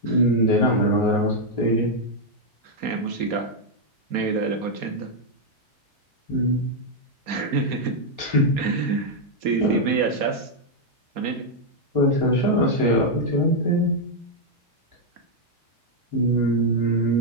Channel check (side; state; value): left; late; 4.2 ms